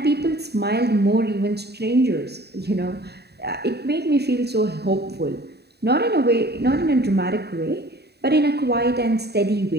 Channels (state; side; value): late; left; 0.48 ms